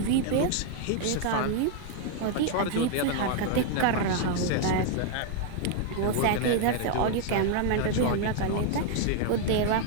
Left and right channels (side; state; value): both; different; correlation 0.00